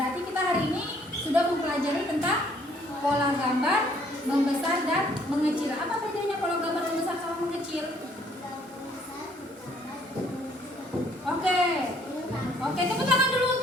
kita hari ini sudah mempelajari tentang pola gambar, membesar dan mengecil. Apa bedanya pola gambar membesar sama mengecil? Oke. Oke, tepuk tangan dulu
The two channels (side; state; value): both; normal; correlation 0.63